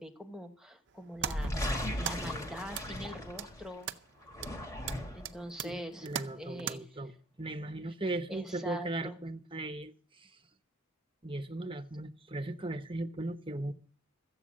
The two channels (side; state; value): both; normal; correlation 0.59